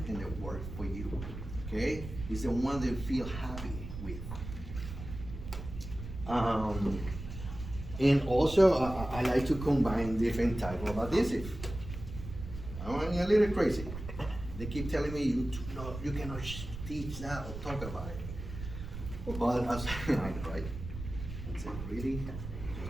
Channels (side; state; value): right; noise; rumble, 9 dB below the sound